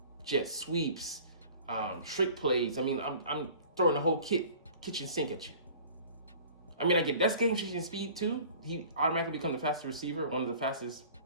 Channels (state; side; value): inverted; both; correlation -0.46